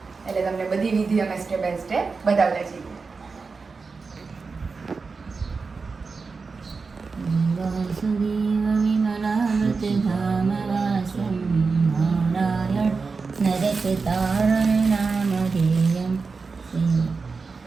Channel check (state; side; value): quieter; left; 4.5 dB